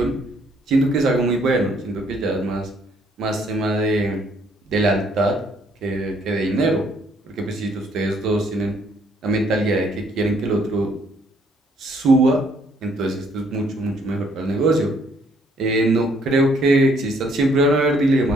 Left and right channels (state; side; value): normal; both; correlation 0.66